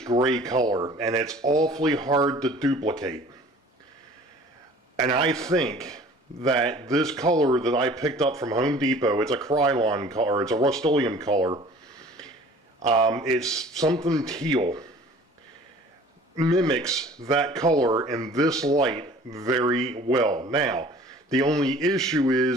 gray color, and it's awfully hard to duplicate. And I think that this color that I picked up from Home Depot, it's a Krylon color, it's a Rust-Oleum color, it's something teal, mimics that color in this light very well. Now, the only issue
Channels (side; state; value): both; normal; correlation 0.48